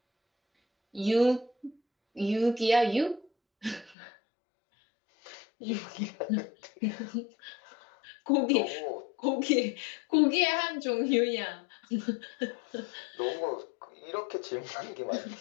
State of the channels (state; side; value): drops out; right; at 4.0 s